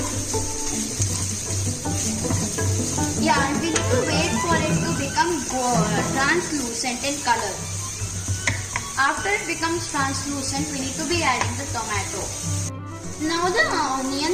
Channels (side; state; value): both; identical; correlation 1.00